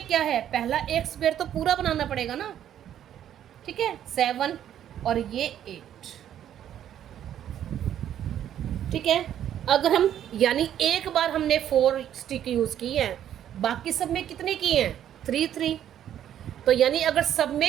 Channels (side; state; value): left; quieter; 10.5 dB